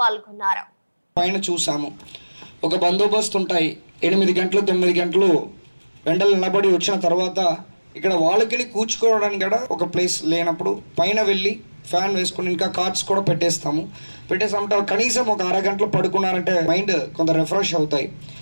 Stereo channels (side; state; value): both; inverted; correlation -1.00